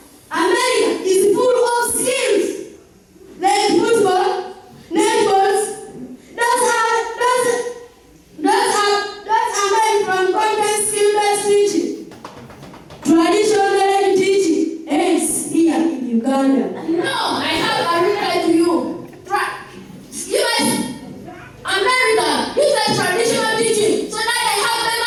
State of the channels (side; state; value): both; identical; correlation 1.00